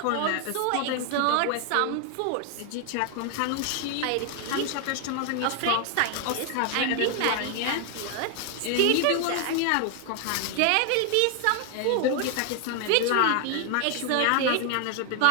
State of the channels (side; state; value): both; different; correlation 0.00